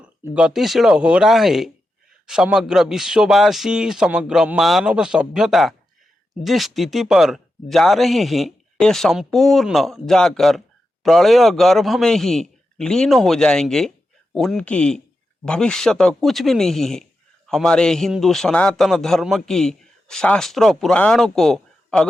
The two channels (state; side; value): normal; both; correlation 0.89